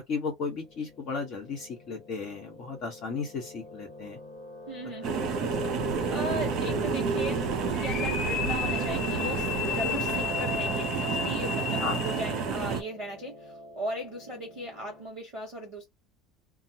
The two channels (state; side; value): normal; both; correlation 0.32